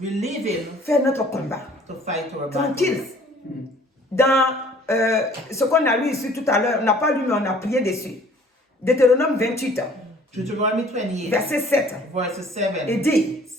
leave Him faire notre combat. to fight our Tranquille. battles. Dans ce qu'on a lu ici tout à l'heure, on n'a pas lu mais on a prié dessus. Deutéronome 28, Deuteronomy 28, verset 7, verse 7 et dit,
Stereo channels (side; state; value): both; normal; correlation 0.54